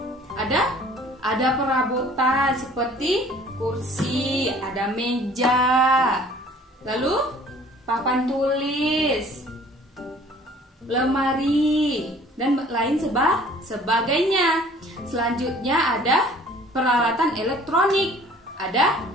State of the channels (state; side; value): normal; both; correlation 0.52